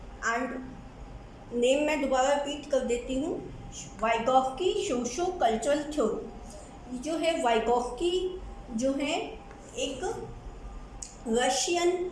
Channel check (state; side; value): identical; both; correlation 1.00